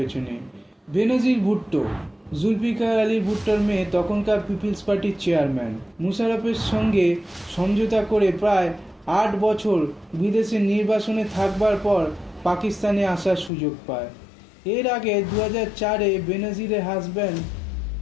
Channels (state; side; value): drops out; right; at 13.5 s